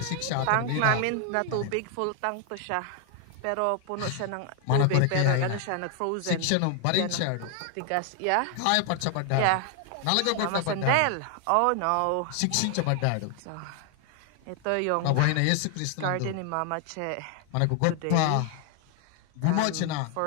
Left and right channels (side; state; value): both; different; correlation 0.00